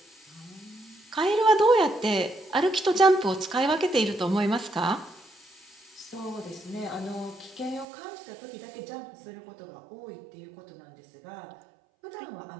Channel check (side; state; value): left; drops out; at 7.9 s